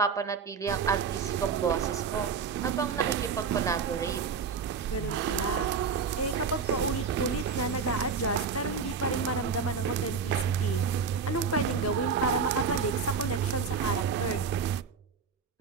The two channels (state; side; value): quieter; left; 5.6 dB